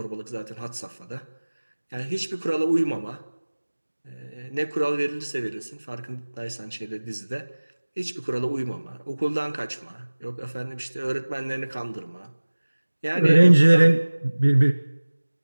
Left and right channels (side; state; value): both; inverted; correlation -1.00